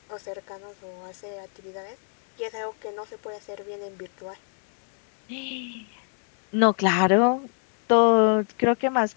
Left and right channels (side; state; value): right; silent; 61 dB below the other